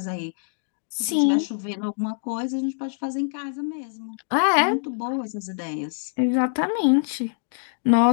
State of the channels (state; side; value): silent; right; digital silence